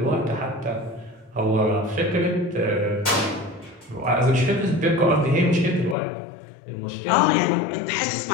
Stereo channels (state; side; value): drops out; right; at 6.0 s